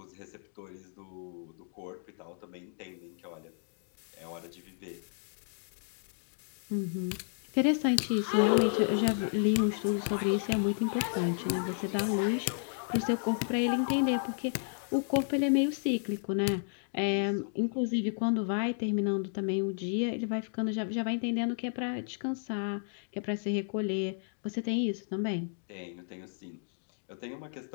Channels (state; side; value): silent; right; digital silence